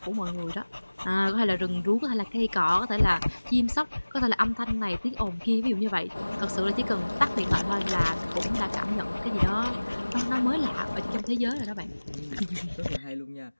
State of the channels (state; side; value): inverted; both; correlation -1.00